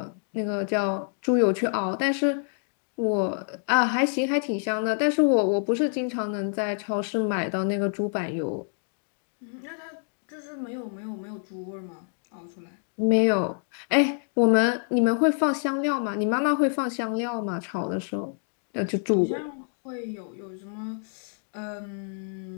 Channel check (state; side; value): silent; right; 60 dB below the other